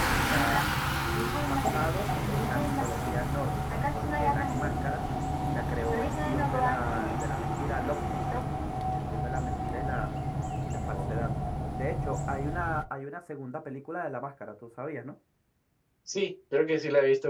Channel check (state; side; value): identical; both; correlation 1.00